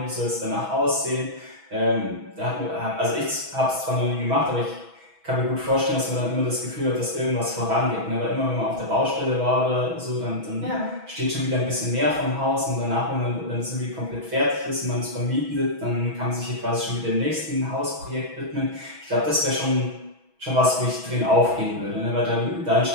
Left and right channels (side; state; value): left; late; 6.2 ms